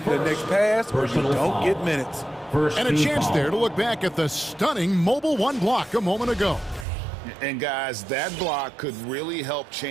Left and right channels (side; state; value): left; drops out; at 6.9 s